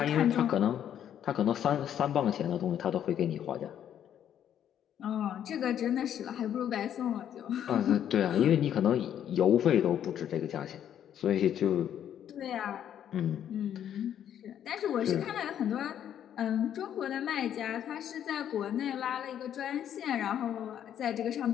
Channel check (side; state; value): right; quieter; 10.0 dB